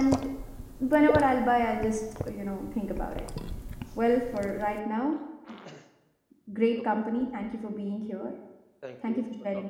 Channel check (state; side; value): identical; both; correlation 1.00